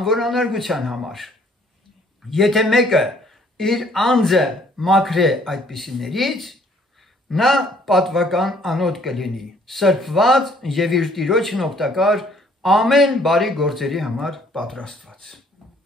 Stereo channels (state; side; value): normal; both; correlation 0.61